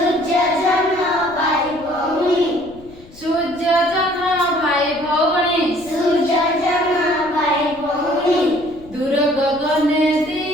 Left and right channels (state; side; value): noise; left; rumble, 22 dB below the sound